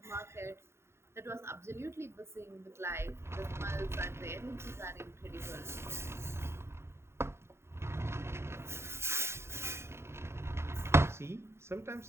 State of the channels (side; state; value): left; late; 0.13 ms